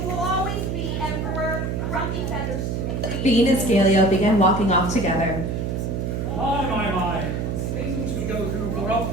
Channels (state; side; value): noise; right; hum, 2 dB below the sound